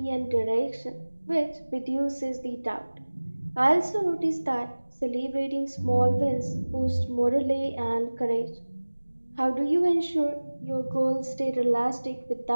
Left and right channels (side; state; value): both; inverted; correlation -1.00